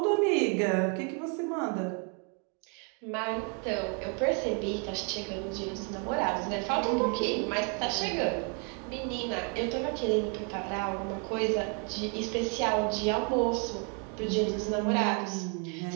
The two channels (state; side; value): quieter; left; 37.7 dB